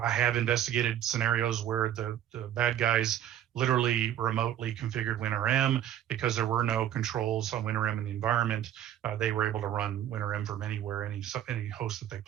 have investigated scenarios where the bad guys literally remotely configured WinRM because there were no controls on WinRM in the environment. They were able to run WinRM from anywhere, any host that they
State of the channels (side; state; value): left; quieter; 11.1 dB